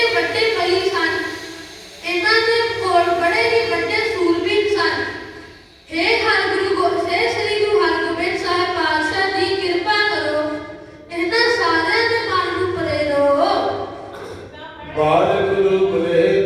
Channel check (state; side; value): identical; both; correlation 1.00